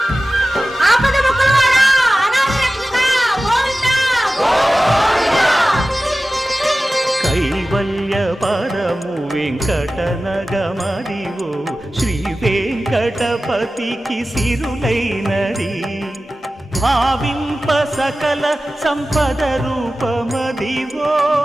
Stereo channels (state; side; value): normal; both; correlation 0.96